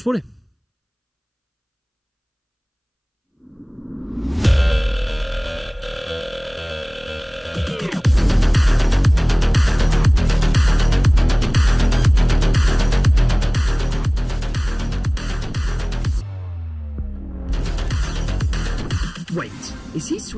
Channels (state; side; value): identical; both; correlation 1.00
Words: spori. Wait, is he